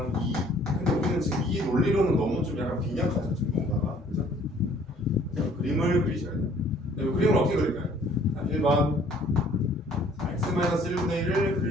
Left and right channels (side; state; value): both; normal; correlation 0.57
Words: 2. 근데 우리는 지금 이 논리로는 너무 좀 약간 빈약하죠. 지금 뭔가가. 그죠? 자, 그림을 그리셔야 돼요. 네, 그림을 어떻게 그릴까요? 자, 1번 x-1분의 1을